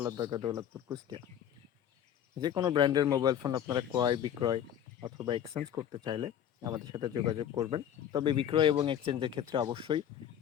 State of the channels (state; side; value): quieter; right; 9.9 dB